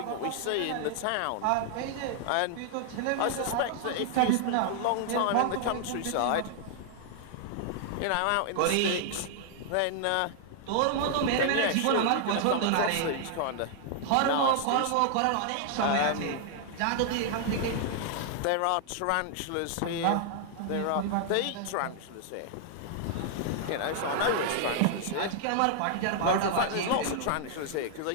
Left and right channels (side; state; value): both; different; correlation -0.01